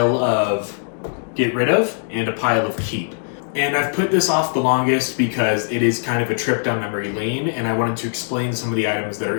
of get rid of and a pile of keep. And I've put this off the longest because it is kind of a trip down memory lane and I wanted to explain some of the items that are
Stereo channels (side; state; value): right; silent; digital silence